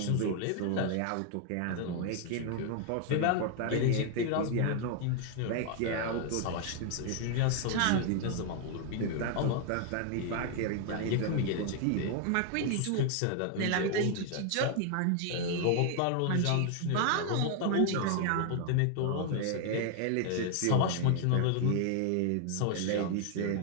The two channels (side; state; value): both; different; correlation 0.00